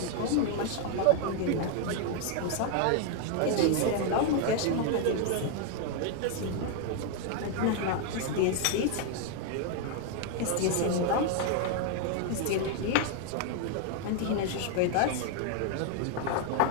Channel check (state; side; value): different; both; correlation 0.01